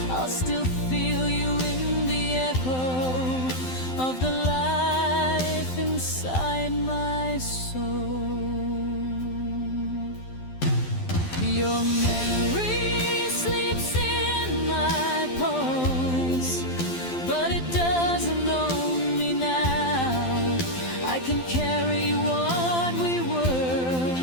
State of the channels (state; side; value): late; right; 12 ms